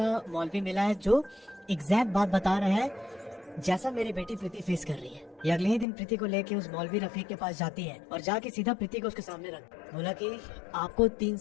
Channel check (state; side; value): drops out; right; at 5.9 s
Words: मौलवी मिला है जो एग्जैक्ट बात बता रहा है जैसा मेरी बेटी प्रीति फेस कर रही है। ये अगले ही दिन प्रीति को लेके उस मौलवी रफीक के पास जाती है और जाके सीधा प्रीति को उसके सामने रख बोला कि आपको 3